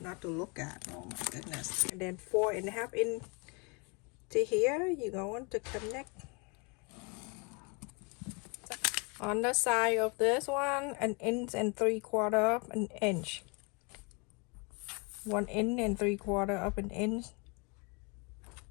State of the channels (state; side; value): quieter; right; 32.0 dB